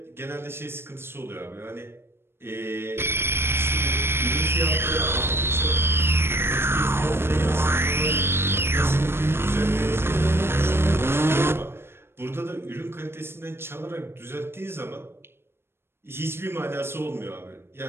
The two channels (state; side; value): late; left; 0.12 ms